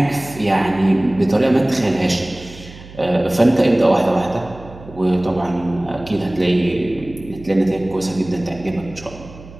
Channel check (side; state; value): right; noise; hum, 18 dB below the sound